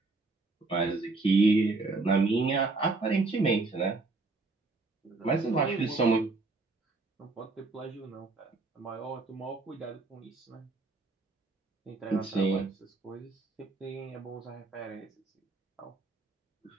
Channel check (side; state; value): left; quieter; 3.6 dB